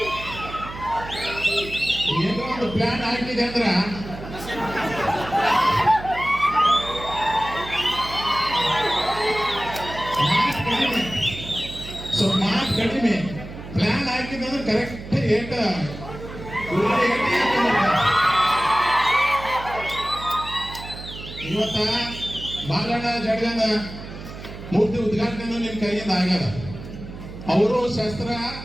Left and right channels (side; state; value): right; noise; hum, 12 dB below the sound